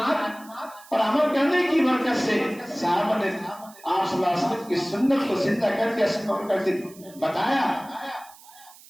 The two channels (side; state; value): right; noise; hiss, 22 dB below the sound